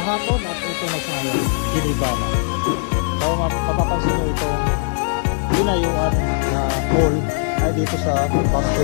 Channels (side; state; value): right; silent; digital silence